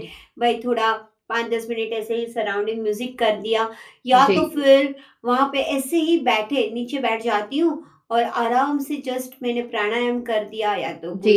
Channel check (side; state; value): both; identical; correlation 1.00